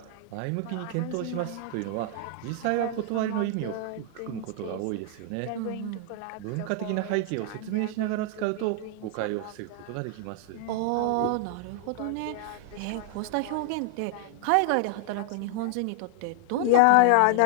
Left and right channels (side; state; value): both; different; correlation 0.00